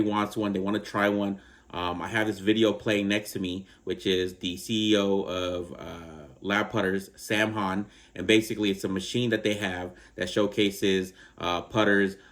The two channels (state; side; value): identical; both; correlation 1.00